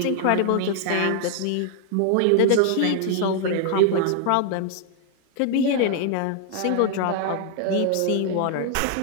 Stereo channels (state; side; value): different; both; correlation 0.00